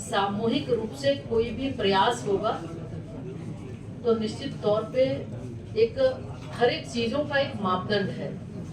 रूप से कोई भी प्रयास होगा तो निश्चित तौर पे एक हर एक चीजों का एक मापदंड है,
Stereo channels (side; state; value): both; identical; correlation 1.00